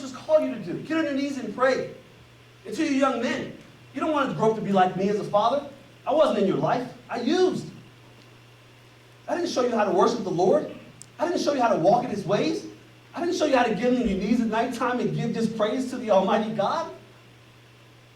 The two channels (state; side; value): identical; both; correlation 1.00